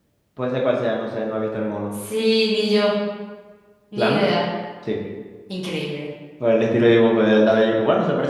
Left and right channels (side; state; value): both; identical; correlation 1.00